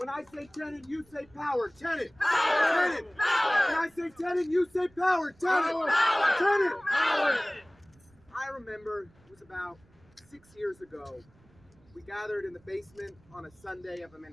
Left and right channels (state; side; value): noise; right; rumble, 29 dB below the sound